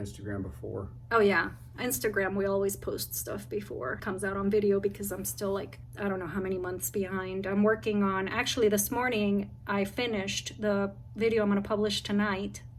before. Oh yeah, Instagram, we always post stuff before it comes out on video, because I'm still like, I don't know how many months behind. I'm working on, actually this morning I finished the video I'm going to publish tonight,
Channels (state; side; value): identical; both; correlation 1.00